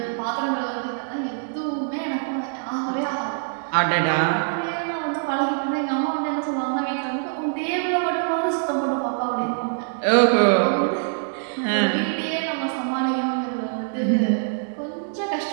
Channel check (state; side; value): silent; left; digital silence